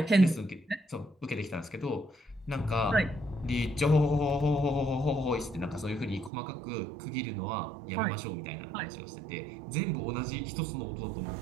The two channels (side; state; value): left; drops out; at 6.3 s